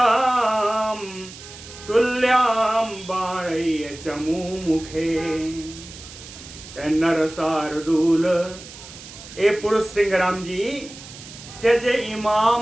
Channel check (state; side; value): noise; right; hiss, 16 dB below the sound